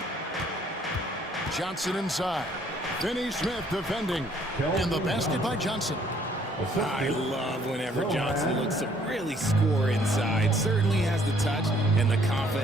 Johnson inside. Finney Smith defending. And the basket by Johnson. I love whenever Johnson looks to really score inside. Certainly has the touch and the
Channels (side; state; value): both; normal; correlation 0.63